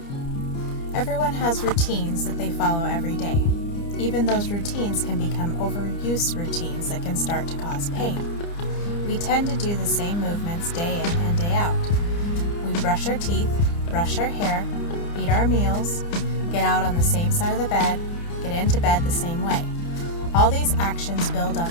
Everyone has routines that they follow every day. Even those routines can become overuse routines that can start to cause pain. We tend to do the same movements day in and day out. We brush our teeth, brush our hair, eat our meals, get out on the same side of the bed, get into bed the same way. All these actions build up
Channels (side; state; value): right; late; 30 ms